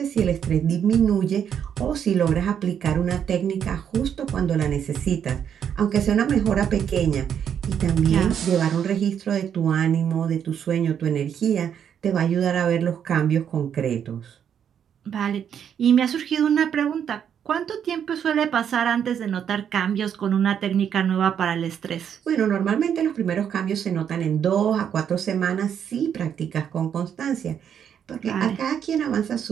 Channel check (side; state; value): left; quieter; 8.5 dB